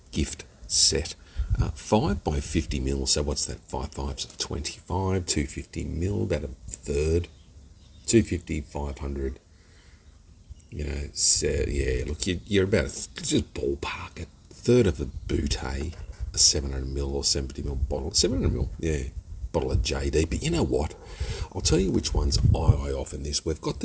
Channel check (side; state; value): both; identical; correlation 1.00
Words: gift set, 5 by 50 mil. So what's that? 5 fives of 25, 250 mil, about a third, 250, 500. You know, so yeah. Look, you're about just ballpark it. Third of a Boutte, a 700 mil or 70 mil bottle, 700 mil, yeah, bottle of JD. But you know what? I'll tell you which ones I off in this. We've got